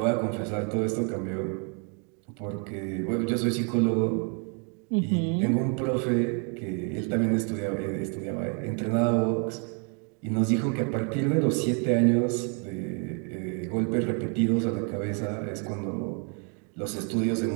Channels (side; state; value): left; quieter; 38.4 dB